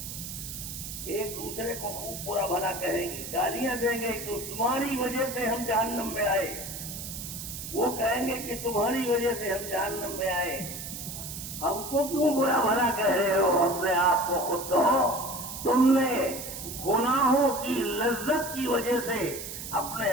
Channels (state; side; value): noise; right; hiss, 8 dB below the sound